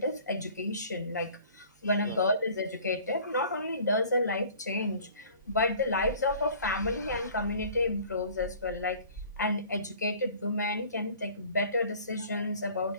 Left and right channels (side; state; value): both; inverted; correlation -0.49